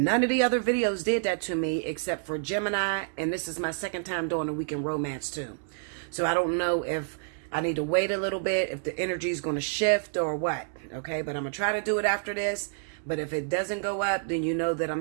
of the other videos did that to me except for Gemini, and this is my second time doing the weekend romance too. So I don't know if I need to wait a little bit, if the energy is going to shift or what. Okay, but I'm gonna try to do it after this. But if it doesn't go up, then you know that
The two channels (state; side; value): silent; left; digital silence